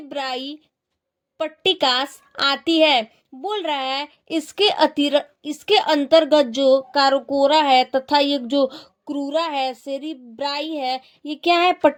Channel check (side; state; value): both; identical; correlation 1.00